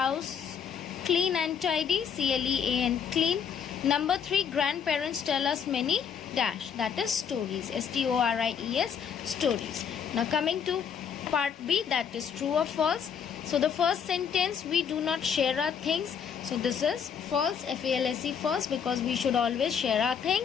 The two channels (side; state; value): right; quieter; 7.4 dB